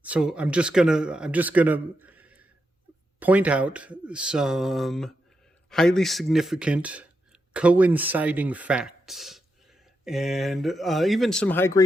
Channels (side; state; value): both; normal; correlation 0.85